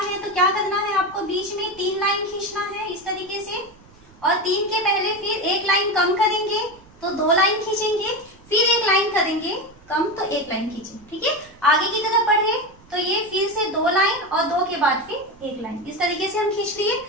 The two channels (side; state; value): right; noise; rumble, 26 dB below the sound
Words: हैं तो क्या करना है आपको, बीच में 3 लाइन खींचना है इस तरीके से, और 3 के पहले फिर 1 लाइन कम करेंगे तो 2 लाइन खींचेंगे, फिर 1 लाइन करेंगे कम तो 1 लाइन खींचेंगे। ठीक है, आगे की तरफ बढ़े तो ये फिर से 2 लाइन और 2 के बाद फिर 1 लाइन, इस तरीके से हम खींच लिए।